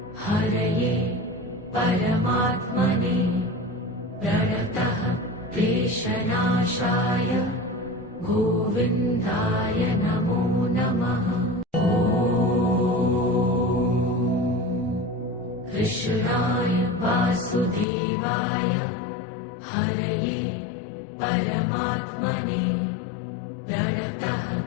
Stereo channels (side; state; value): right; drops out; at 17.9 s